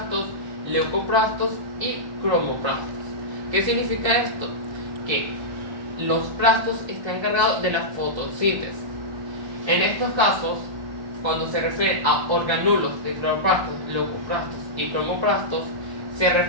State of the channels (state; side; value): late; left; 1.3 ms